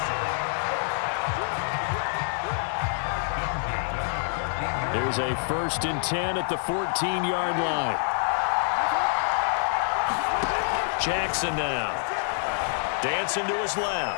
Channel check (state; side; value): silent; right; digital silence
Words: Here's a 1st and 10 at the 14-yard line. Jackson now. Dancing to his